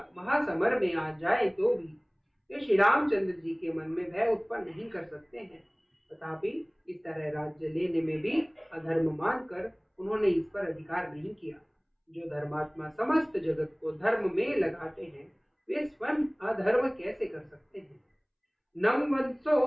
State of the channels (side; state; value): both; identical; correlation 1.00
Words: में आ जाए तो भी वे श्री रामचंद्र जी के मन में भय उत्पन्न नहीं कर सकते हैं। तथापि इस तरह राज्य लेने में भी अधर्म मानकर उन्होंने इस पर अधिकार नहीं किया। जो धर्मात्मा समस्त जगत को धर्म में लगाते हैं, वे स्वयं अधर्म कैसे कर सकते हैं? नम वंशो